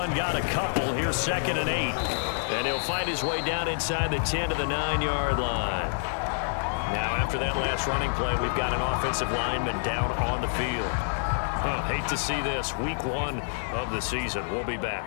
got a couple. Here's 2nd and 8. And he'll find his way down inside the 10 to the 9-yard line. Now, after that last running play, we've got an offensive lineman down on the field. Hate to see this. Week 1 of the season. We'll be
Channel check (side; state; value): right; silent; digital silence